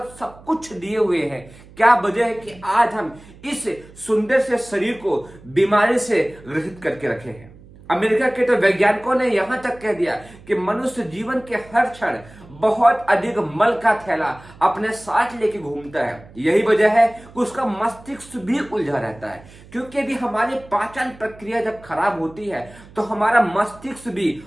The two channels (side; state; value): right; noise; hum, 22 dB below the sound